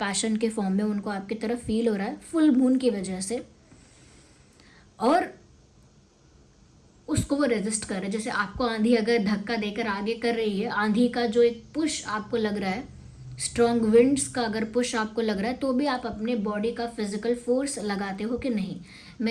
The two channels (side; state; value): both; identical; correlation 1.00